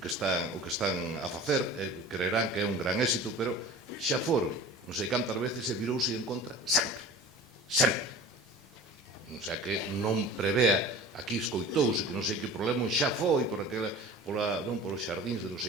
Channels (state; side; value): normal; both; correlation 0.39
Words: están a facer, creerán que é un gran éxito, pero xa foron non sei cantas veces e virouse en contra sempre. O sea que non prevea, aquí escoitouse que non sei que problema xa foi por os xardíns de non